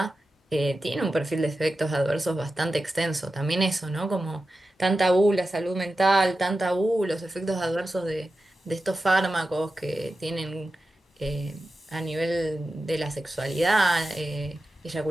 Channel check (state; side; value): normal; both; correlation 0.92